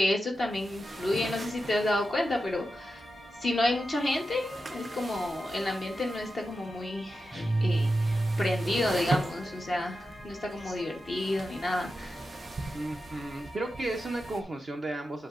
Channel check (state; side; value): normal; both; correlation 0.90